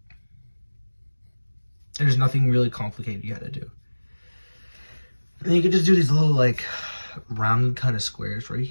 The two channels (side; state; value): both; inverted; correlation -1.00